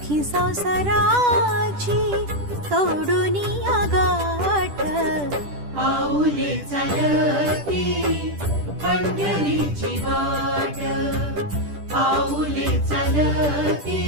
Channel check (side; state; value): left; late; 10 ms